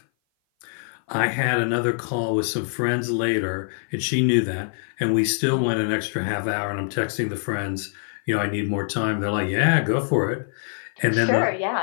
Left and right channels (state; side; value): silent; right; 57 dB below the other